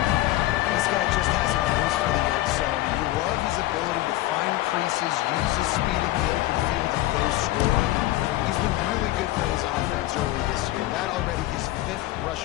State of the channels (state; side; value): quieter; right; 16.3 dB